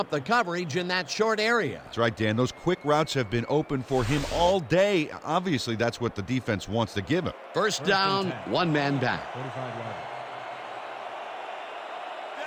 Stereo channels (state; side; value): identical; both; correlation 1.00